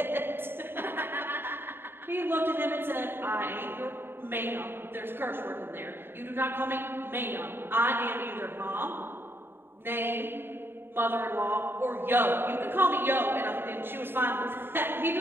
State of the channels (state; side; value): late; left; 0.11 ms